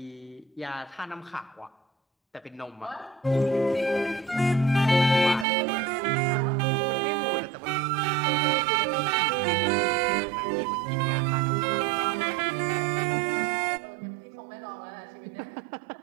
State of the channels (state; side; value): drops out; left; at 5.5 s